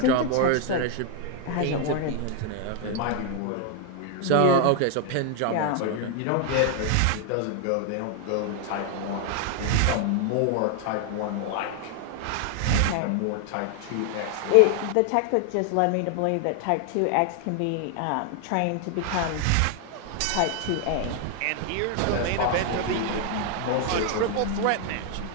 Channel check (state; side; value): different; both; correlation 0.00